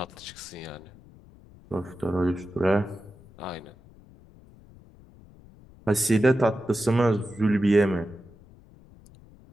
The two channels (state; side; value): noise; left; rumble, 23 dB below the sound